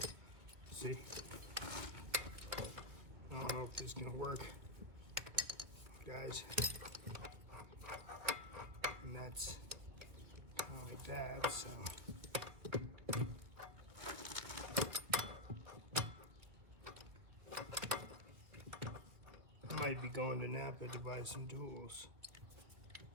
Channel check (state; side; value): late; left; 2.4 ms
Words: See? I don't know if this is gonna work, guys. And that's kind of like that, so. I might be going to Napa to buy some tools.